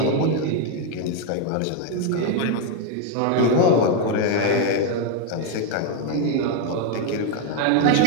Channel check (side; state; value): both; different; correlation 0.01